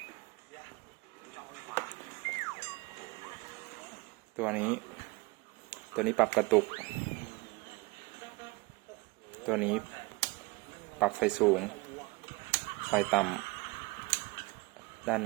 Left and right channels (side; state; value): left; quieter; 24.4 dB